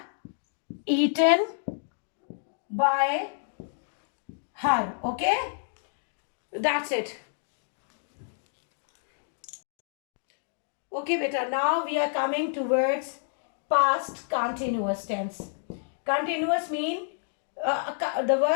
eaten by her. Okay? That's it. Okay, beta. Now we are coming towards past continuous tense. Continuous mean the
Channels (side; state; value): right; silent; digital silence